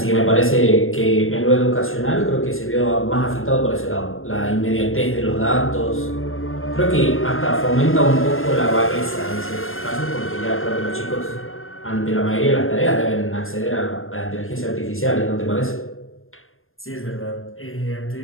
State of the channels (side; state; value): right; late; 0.60 ms